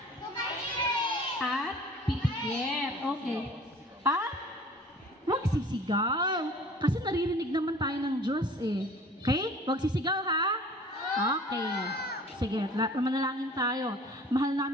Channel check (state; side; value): normal; both; correlation 0.47